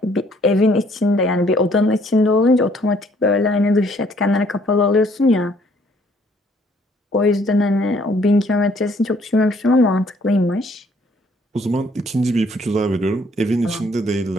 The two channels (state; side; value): normal; both; correlation 0.63